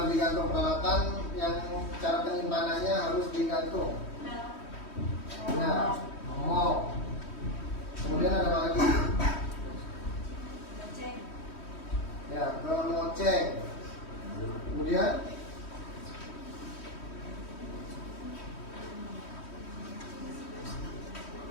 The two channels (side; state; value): right; late; 3.1 ms